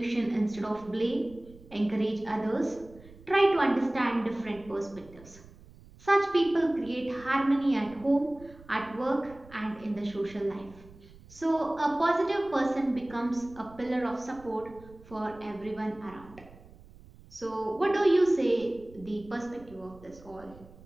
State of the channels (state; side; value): noise; right; rumble, 22 dB below the sound